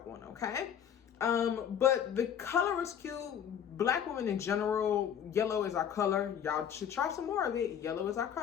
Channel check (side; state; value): right; quieter; 8.7 dB